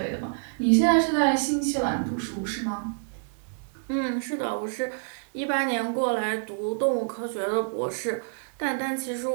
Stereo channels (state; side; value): silent; left; 60 dB below the other